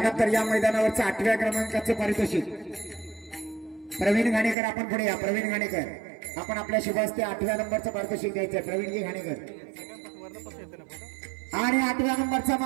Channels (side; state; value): left; drops out; at 4.5 s